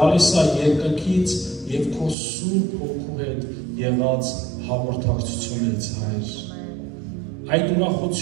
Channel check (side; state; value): left; drops out; at 2.1 s